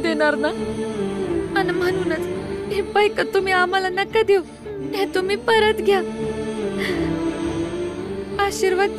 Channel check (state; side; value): identical; both; correlation 1.00